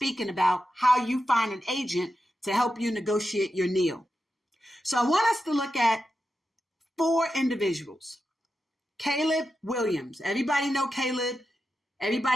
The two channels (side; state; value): both; normal; correlation 0.90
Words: about how you find an agent to help you negotiate your NIL. So I want us to look at 4 individuals. Caleb Williams. Everybody know Caleb.